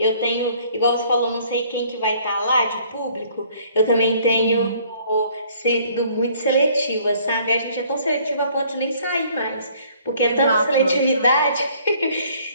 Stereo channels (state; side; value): inverted; both; correlation -0.59